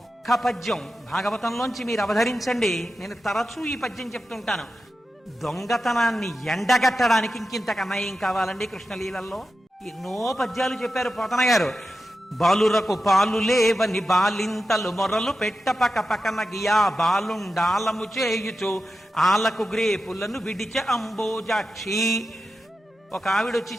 పద్యం భాగవతంలోంచి మీరు అవధరించండి, నేను తరచూ ఈ పద్యం చెప్తుంటాను. దొంగతనాన్ని ఎండగట్టడానికి ఇంకింతకన్నా ఏం కావాలండి కృష్ణలీలల్లో? ఎన్నో పద్యాలు చెప్పారు పోతన గారు. బాలురకు పాలు లేవని బాలింతలు మొరలు పెట్ట పక పకన గియా బాలుండాలము చేయుచు ఆలకు గ్రేపులను విడిచ అంబోజాక్షి. ఒక ఆవిడొచ్చి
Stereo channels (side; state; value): both; normal; correlation 0.91